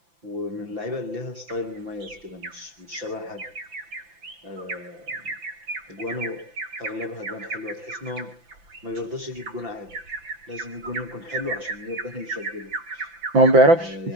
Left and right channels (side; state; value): left; late; 5.9 ms